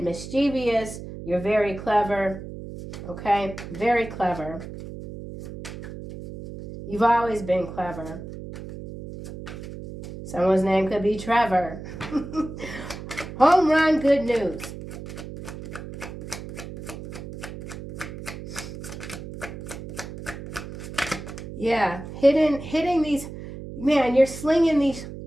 mischievous. You're very clever. Okay, very clever. You've always been clever. Someone's name could be Trevor. Home run, good news. Yeah, hitting these, man, you're slinging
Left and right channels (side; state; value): right; noise; hum, 11 dB below the sound